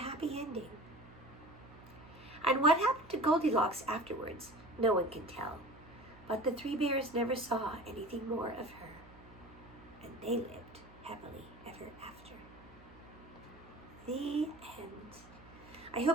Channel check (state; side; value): noise; right; hum, 21 dB below the sound